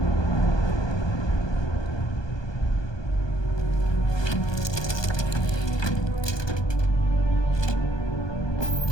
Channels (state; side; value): late; right; 1.2 ms